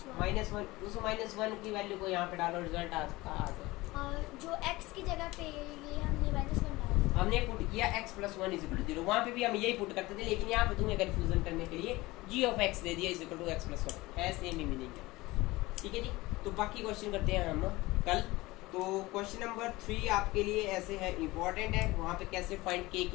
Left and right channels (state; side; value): quieter; right; 20.3 dB